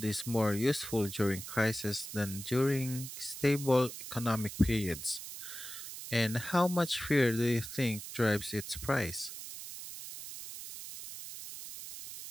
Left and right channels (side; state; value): right; noise; hiss, 10 dB below the sound